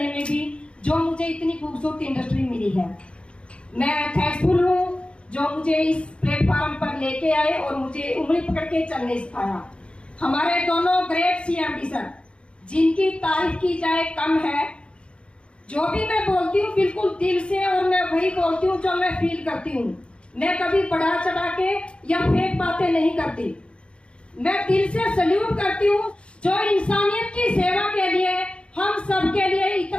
में भी, जो मुझे इतनी खूबसूरत इंडस्ट्री मिली है। मैं थैंकफुल हूँ जो मुझे इस प्लेटफॉर्म पर लेके आए और मुझे उंगली पकड़ के चलने सिखाया। हमारे दोनों ग्रेट सीएमडी सर, जिनकी तारीफ की जाए कम है। जो भी मैं बोलती हूँ बिल्कुल दिल से, और मैं वही बोलती हूँ जो मैं फील करती हूँ। मैं कभी बढ़ा चढ़ा के या फेक बातें नहीं करती। मैं दिल से सल्यूट करती हूँ जो इंसानियत की सेवा के लिए, हम सब के लिए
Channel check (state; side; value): late; right; 0.057 ms